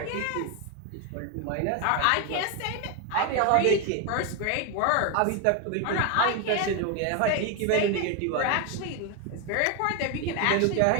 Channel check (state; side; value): different; both; correlation 0.01